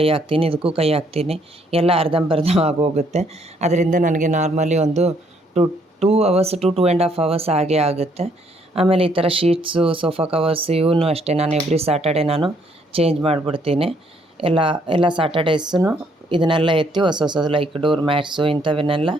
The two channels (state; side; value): normal; both; correlation 0.68